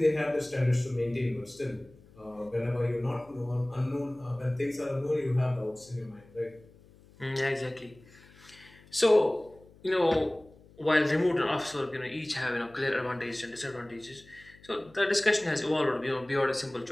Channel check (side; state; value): left; noise; hum, 25 dB below the sound